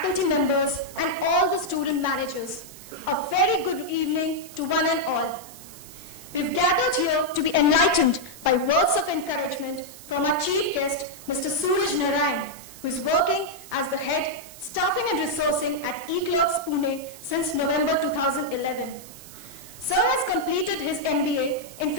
members, and all the student managers. A very good evening to one and all. We've gathered here to be enlightened by words of encouragement from our chief guest, Mr. Suraj Narayan, who is working as the head staffing and resourcing at eClerx Pune since November 2011. Sir has completed his MBA in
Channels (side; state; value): right; noise; hiss, 17 dB below the sound